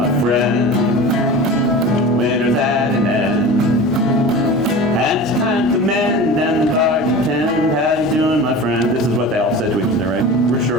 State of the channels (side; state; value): both; normal; correlation 0.34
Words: friend? Winter's at an end, and it's time to mend and the garden tend. How you doing, my friend? This is what they all said to each other, right? We're